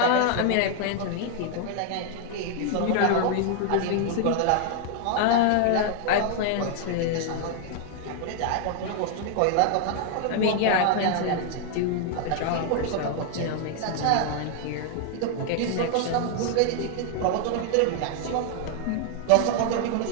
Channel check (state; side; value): different; both; correlation 0.00